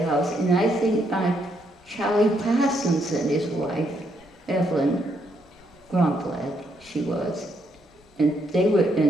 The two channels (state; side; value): normal; both; correlation 0.75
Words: house. And I think Charlie Parsons and his wife, Evelyn Gromblad, she was. And they were